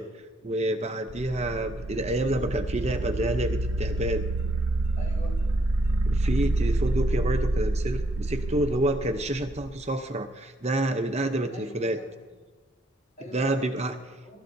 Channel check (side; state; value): both; normal; correlation 0.72